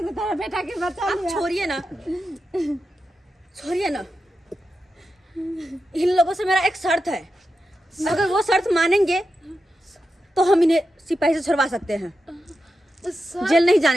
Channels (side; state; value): both; normal; correlation 0.89